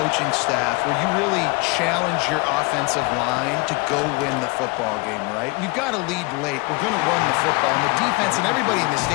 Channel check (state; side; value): quieter; right; 26.4 dB